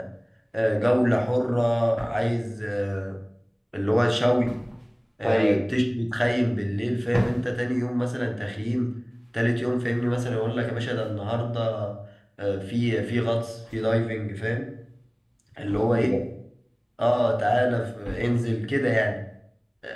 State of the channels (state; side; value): identical; both; correlation 1.00